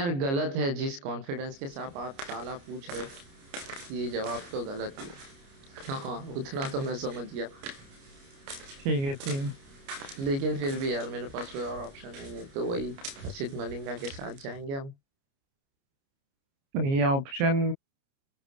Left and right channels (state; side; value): late; left; 29 ms